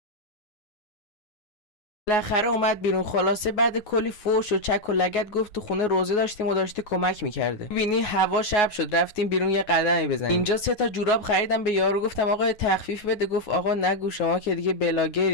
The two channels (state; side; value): late; right; 9.5 ms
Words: بالاخره اومد بیرون. خلاصه بعد کلی فوش و چک و لگد گفت تو خونه روزه داشتیم و داشته کمک میکرده. ببینی هوا شب شد، رفتیم بیرون یه قدمی بزنیم. اینجا 3 تا جوراب خریدم به یارو، گفتم آقا تخفیف بده. گفت آقا نگو شما که دیگه